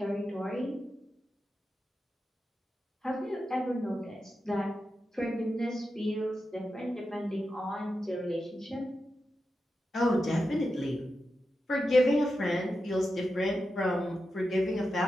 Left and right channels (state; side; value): normal; both; correlation 0.89